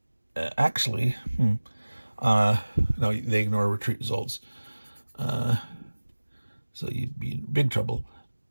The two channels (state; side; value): inverted; both; correlation -1.00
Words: actually, no, they ignore retreat results. So you'd be in big trouble.